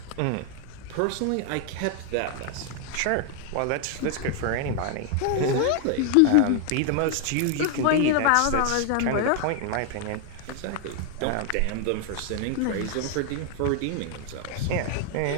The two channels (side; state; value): both; different; correlation 0.00